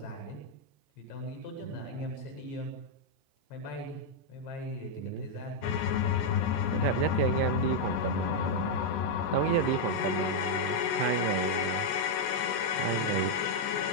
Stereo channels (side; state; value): right; late; 14 ms